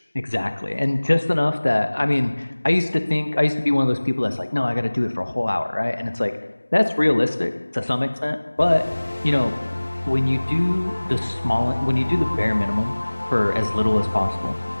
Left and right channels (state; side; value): inverted; both; correlation -1.00